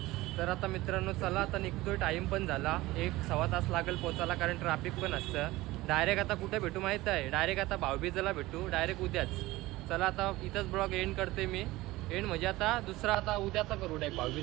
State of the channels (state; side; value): quieter; left; 18.8 dB